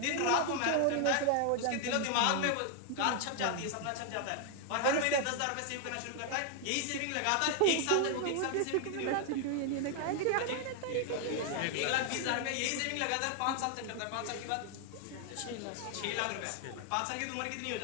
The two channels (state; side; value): different; both; correlation 0.00